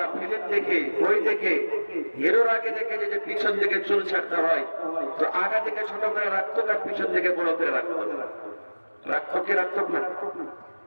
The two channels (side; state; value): both; inverted; correlation -1.00